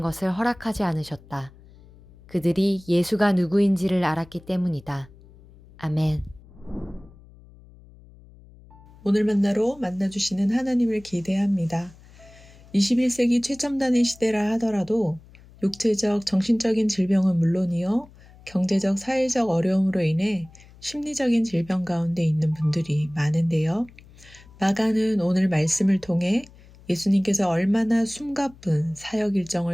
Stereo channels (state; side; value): noise; left; hum, 23 dB below the sound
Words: 것을 허락하지 않으셨다. 그들이 예수가 누구인지를 알았기 때문이다. 아멘. 오늘 만나로 만나주시는 하나님을 기대합니다. 21세기 최첨단의 시대라 하더라도 육체적, 정신적인 질병은 물론이요, 경제적, 사회적 어려움으로 인해 심리적인 질병 가운데 있는 분들이 많은데요. 마가는 오늘 말씀을 통해 예수님께서 얼마나 숨가쁜 사역